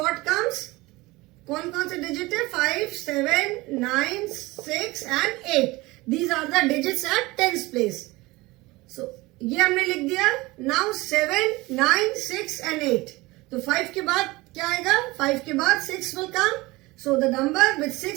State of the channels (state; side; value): quieter; left; 21.4 dB